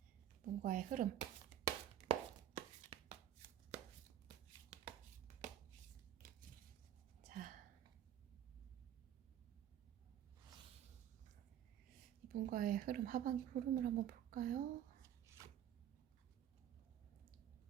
이분과의 흐름. 자, 이분과의 흐름, 하반기 흐름을 한번 볼까요?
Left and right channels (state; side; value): quieter; left; 11.0 dB